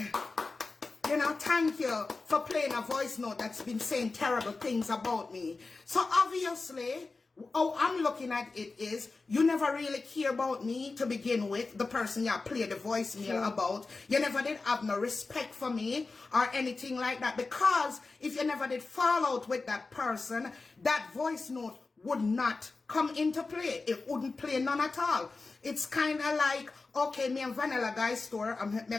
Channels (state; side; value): quieter; right; 3.8 dB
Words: you know, thank you for playing a voice note that's been saying terrible things about me? So obviously, how I'm looking at it is, you never really care about me to begin with, the person you play the voicemail about. You never did have no respect for me or anything like that, because if you never did fall out with that person, that voice note would not come into play. It wouldn't play none at all. It's kind of like, okay, me and Vanilla Guy store, I'm